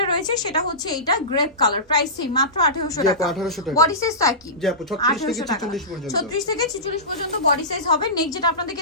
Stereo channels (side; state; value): both; normal; correlation -0.20